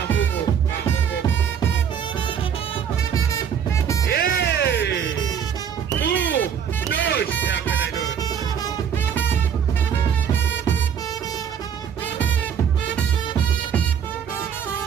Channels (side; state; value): left; quieter; 7.9 dB